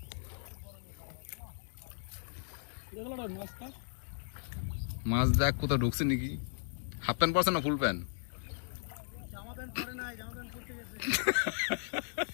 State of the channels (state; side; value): silent; right; digital silence